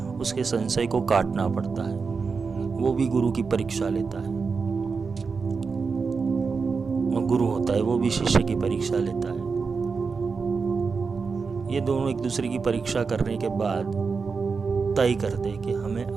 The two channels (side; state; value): left; quieter; 5.0 dB